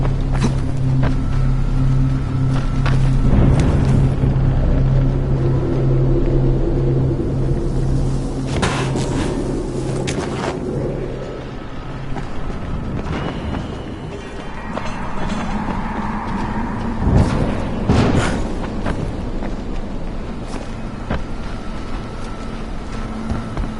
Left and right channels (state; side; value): identical; both; correlation 1.00